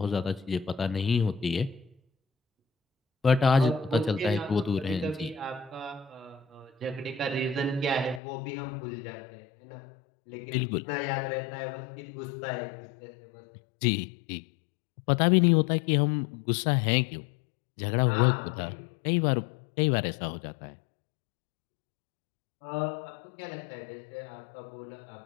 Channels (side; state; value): right; drops out; at 8.2 s